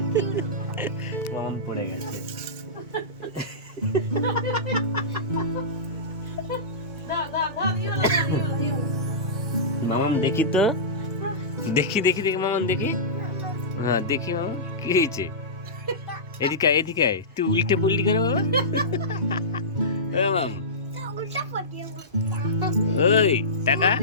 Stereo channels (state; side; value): normal; both; correlation -0.19